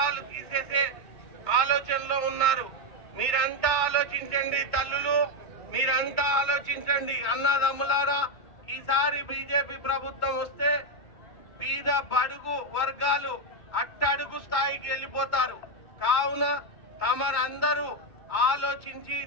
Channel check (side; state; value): right; late; 2.2 ms